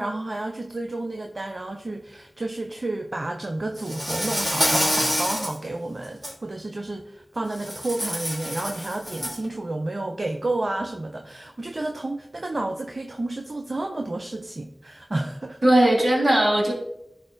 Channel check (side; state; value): both; normal; correlation 0.97